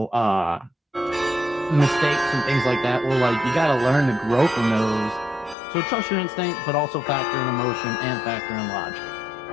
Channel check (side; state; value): right; drops out; at 5.6 s